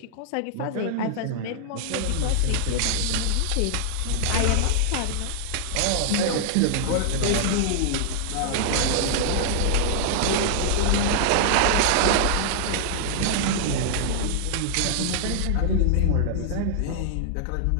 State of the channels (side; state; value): both; different; correlation -0.01